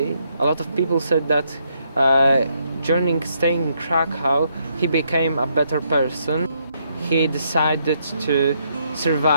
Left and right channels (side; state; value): both; inverted; correlation -0.75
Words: a lot of people said that during staying in Krakow, he became a better person. He decided to